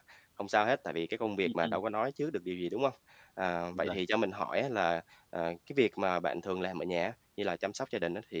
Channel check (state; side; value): identical; both; correlation 1.00